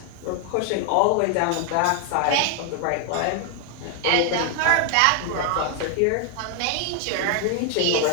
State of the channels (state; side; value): different; both; correlation 0.00